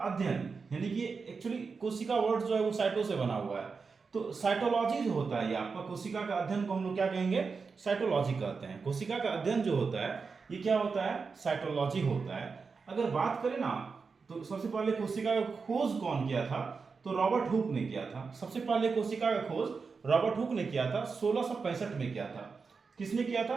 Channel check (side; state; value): left; quieter; 4.9 dB